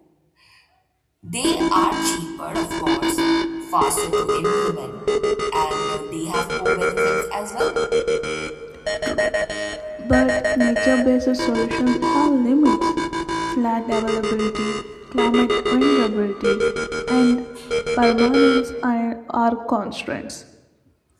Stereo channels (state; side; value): identical; both; correlation 1.00